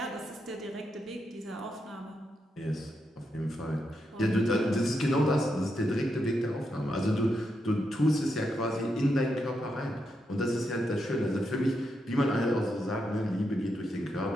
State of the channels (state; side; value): normal; both; correlation 0.83